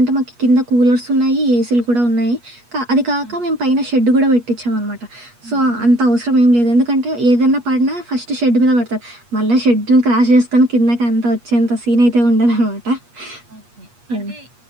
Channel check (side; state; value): left; late; 8.4 ms